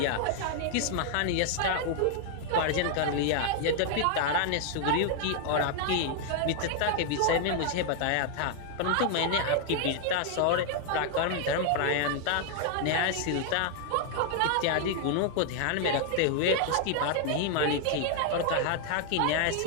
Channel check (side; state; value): both; different; correlation 0.00